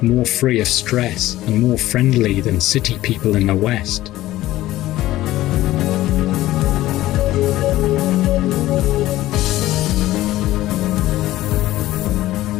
more free of stress, and more friendly than city people in the West.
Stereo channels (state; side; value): quieter; right; 15.7 dB